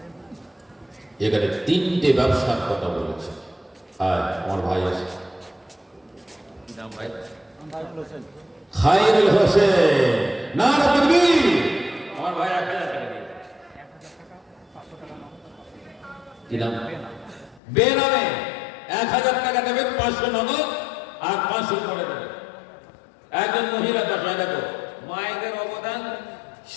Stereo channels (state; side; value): drops out; right; at 17.6 s